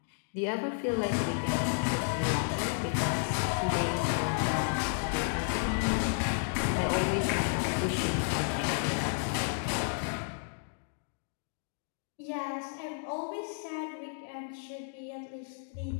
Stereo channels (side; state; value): right; silent; digital silence